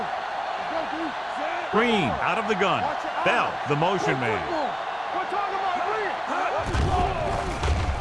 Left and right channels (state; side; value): identical; both; correlation 1.00